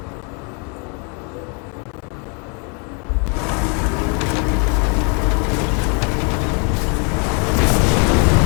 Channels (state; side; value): quieter; right; 36.0 dB